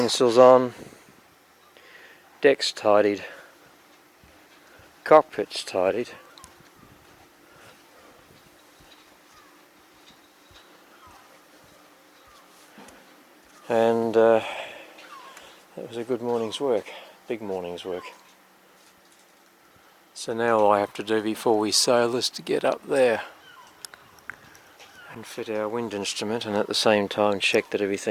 on, deck's tidied, cockpit's tidied, and that was a good morning's work, big morning's work. So now all I have to do before we sail is to get up there and fit our wind instrument, and at the same time check that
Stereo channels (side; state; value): both; identical; correlation 1.00